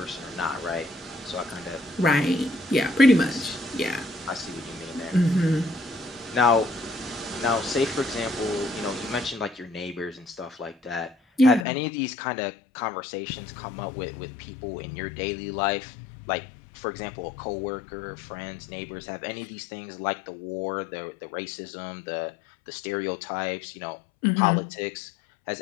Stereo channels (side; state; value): right; drops out; at 11.7 s